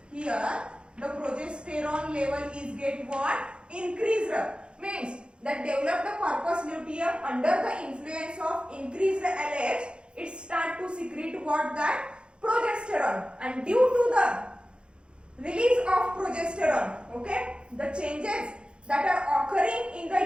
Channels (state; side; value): late; left; 0.055 ms